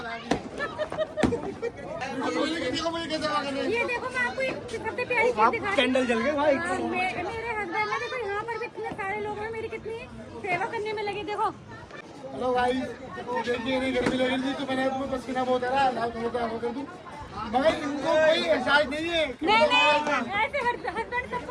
ये देखो मैं आपको एक सबसे प्यारी चीज दिखाती हूँ। कैंडल जल गए भाई। मेरे हस्बैंड ने देखो यहाँ पर भी इतने सारे लोग हैं, मेरी कितनी सेवा करने में लगे। देखो हेलो भाई, देखिए नहीं गर्मी लग रही थी तो मैंने अपना पसीना बहुत आ रहा है, लाइट वो कर दूं, मगर इनको कोई एहसास नहीं है। नहीं ऐसे हस्बैंड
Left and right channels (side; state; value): both; identical; correlation 1.00